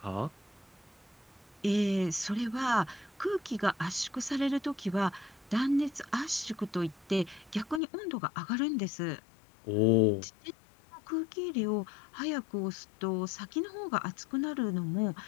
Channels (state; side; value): drops out; right; at 7.8 s